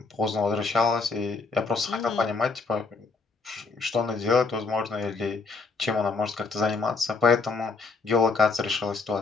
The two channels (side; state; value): right; quieter; 4.2 dB